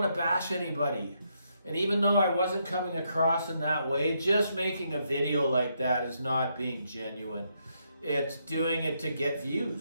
to bash anybody. And even though I wasn't coming across in that way, just making a video like that is not being genuine. It's doing it to get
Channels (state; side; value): inverted; both; correlation -0.78